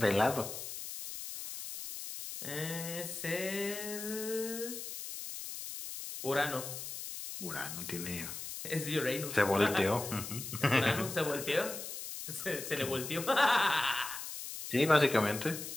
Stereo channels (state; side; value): noise; left; hiss, 8 dB below the sound